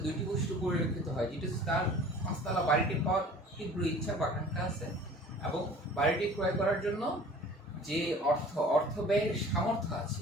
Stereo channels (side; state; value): both; normal; correlation 0.46